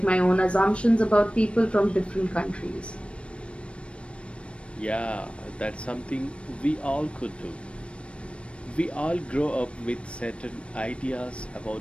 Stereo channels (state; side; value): late; right; 0.060 ms